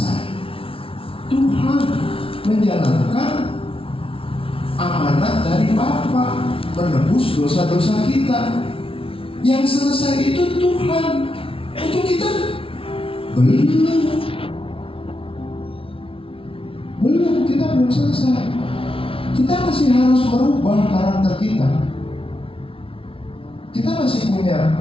Tuhan menjalankan amanat dari Bapa, menebus dosa-dosa kita. Yang selesai itu Tuhan. Untuk kita belum, kita belum selesai. Kita masih harus merubah karakter kita. Kita masih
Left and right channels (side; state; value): right; late; 0.26 ms